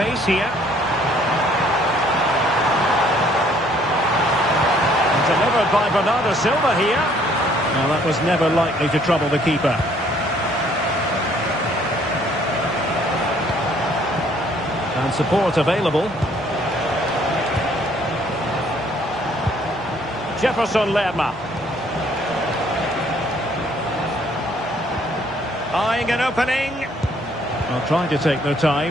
here. And delivered by Bernardo Silva here. Well, that was never likely to trouble the keeper. And support available. Jefferson Lerma. Eyeing an opening. Well, trying to take their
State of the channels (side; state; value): both; normal; correlation 0.62